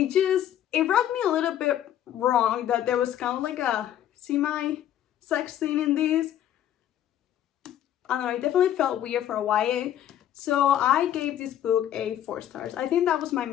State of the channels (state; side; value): quieter; right; 11.2 dB